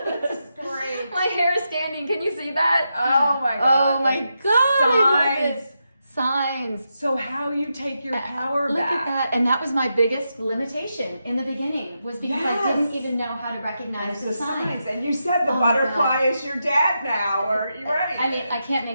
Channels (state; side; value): inverted; both; correlation -0.86